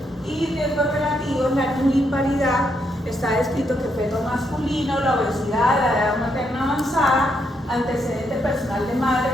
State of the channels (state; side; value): normal; both; correlation 0.78